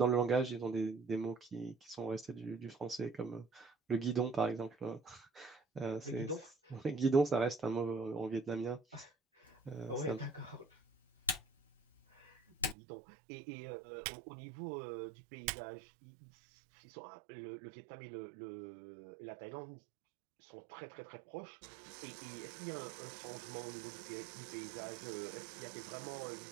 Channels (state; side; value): drops out; left; at 12.8 s